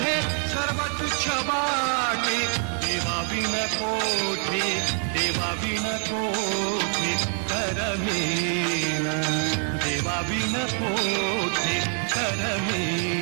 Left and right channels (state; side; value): quieter; left; 39.2 dB